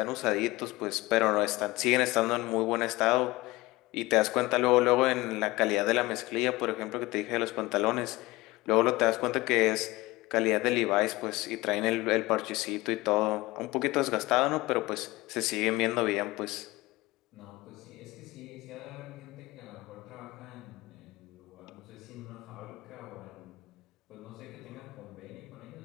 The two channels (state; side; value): quieter; right; 20.6 dB